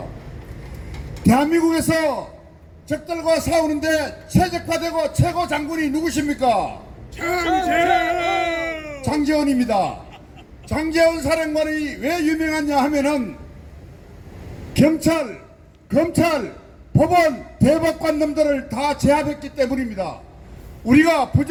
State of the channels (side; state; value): both; identical; correlation 1.00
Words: 대한민국에서 적들과 싸우는데 최적화되고 최고 장군이 누구십니까? 장제원입니다. 장제원 사령관이 왜 유명하냐 하면은 경찰, 검찰, 법원, 대법관 놈들을 다 제압했기 때문입니다. 우리가